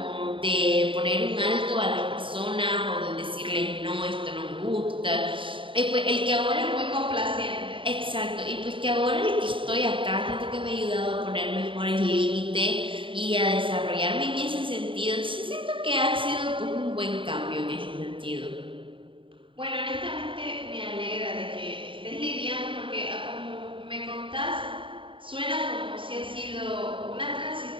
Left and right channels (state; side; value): late; left; 0.25 ms